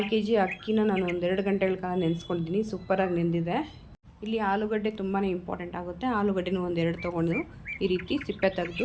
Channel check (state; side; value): identical; both; correlation 1.00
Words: kg ಅಕ್ಕಿನ ನಾನು ಒಂದು 2 ಗಂಟೆಗಳ ಕಾಲ ನೆನೆಸ್ಕೊಂಡಿದ್ದೀನಿ. ಸೂಪರಾಗಿ ನೆಂದಿದೆ. ಇಲ್ಲಿ ಆಲೂಗಡ್ಡೆ ತುಂಬಾ ಇಂಪಾರ್ಟೆಂಟ್ ಆಗುತ್ತೆ. ಆಲೂಗಡ್ಡೆನೂ ಒಂದು 2 ತೊಗೊಂಡು ಈ ರೀತಿ ಸಿಪ್ಪೆ